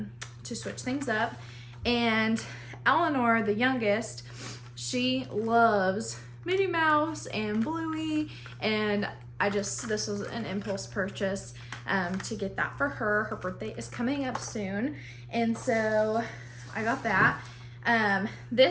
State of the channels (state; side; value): identical; both; correlation 1.00